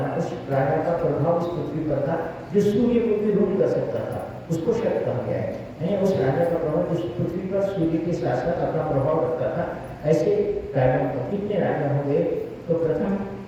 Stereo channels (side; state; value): both; identical; correlation 1.00